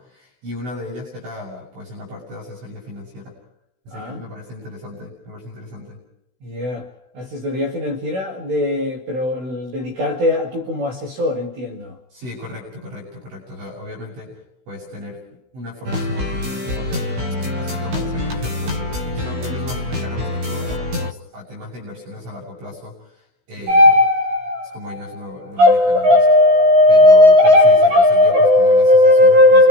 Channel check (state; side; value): late; left; 16 ms